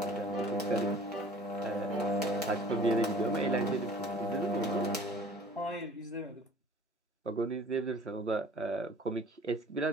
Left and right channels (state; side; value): normal; both; correlation 0.48